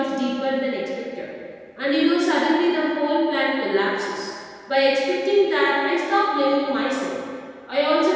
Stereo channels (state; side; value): identical; both; correlation 1.00